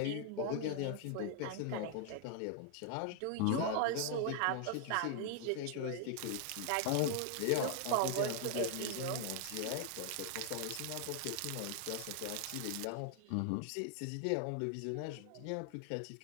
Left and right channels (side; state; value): both; different; correlation 0.00